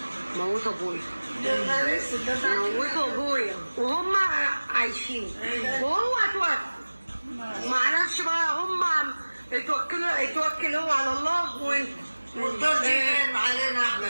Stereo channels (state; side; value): inverted; both; correlation -1.00